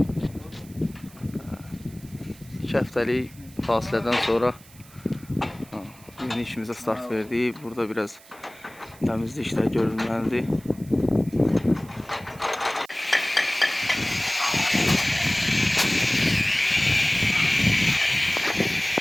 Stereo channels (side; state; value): right; noise; hiss, 23 dB below the sound